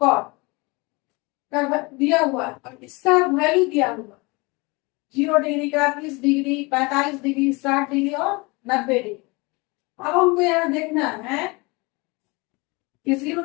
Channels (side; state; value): right; quieter; 26.2 dB